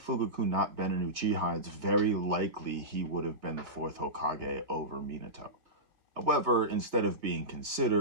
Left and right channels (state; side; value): late; left; 3.4 ms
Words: not been an Uchiha, it's very likely he would have been the 4th Hokage over Minato. However, instead of being